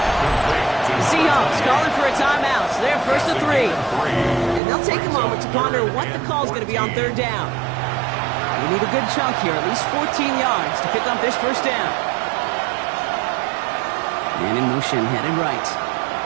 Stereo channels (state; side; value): drops out; left; at 4.6 s